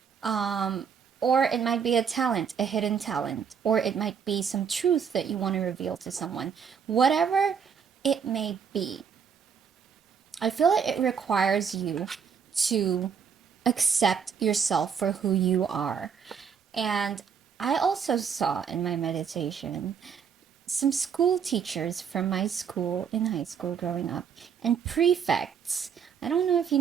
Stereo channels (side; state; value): left; quieter; 7.0 dB